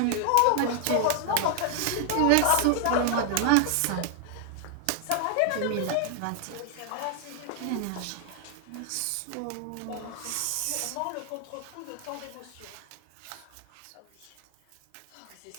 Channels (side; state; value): both; different; correlation 0.00